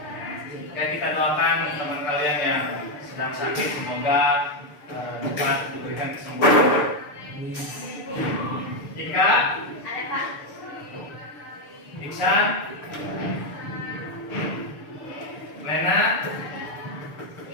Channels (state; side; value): late; right; 6.8 ms